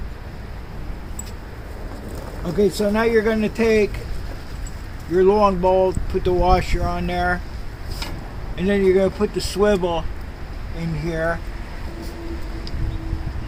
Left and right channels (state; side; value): identical; both; correlation 1.00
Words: Okay, so now you're going to take your long bolt, put the washer on there, and then you're going to put the swivel in here.